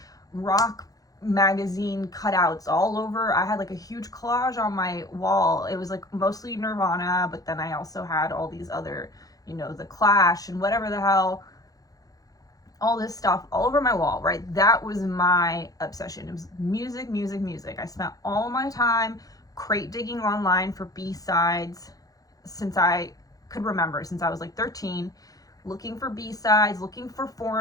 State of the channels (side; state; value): right; late; 0.17 ms